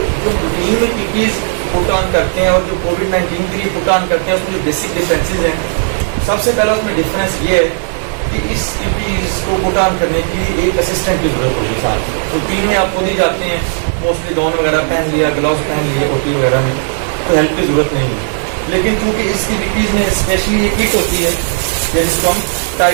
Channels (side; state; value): left; silent; 69 dB below the other